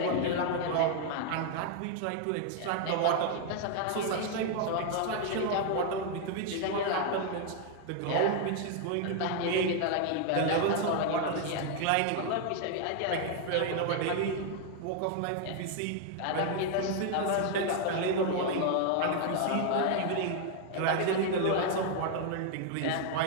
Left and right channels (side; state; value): both; different; correlation 0.00